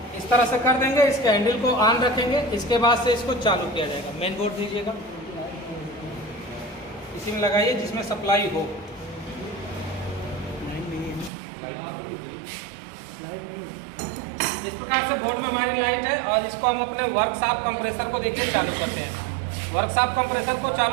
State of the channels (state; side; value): drops out; left; at 11.3 s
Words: इस तरह से कर देंगे। इसके हैंडल को ऑन रखेंगे, इसके बाद से इसको चालू किया जाएगा। मेन बोर्ड दीजिएगा, इसी में लगाइए जिसमें सप्लाई हो। इस प्रकार से बोर्ड में हमारी लाइट है और इसको हम अपने वर्कशॉप कंप्रेसर को देखिए चालू करते हैं। वर्कशॉप कंप्रेसर को